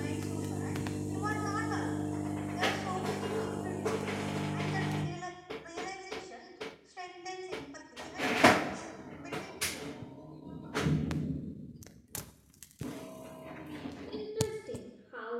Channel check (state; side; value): identical; both; correlation 1.00